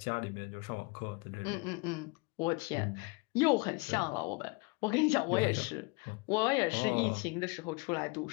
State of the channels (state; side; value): quieter; right; 27.5 dB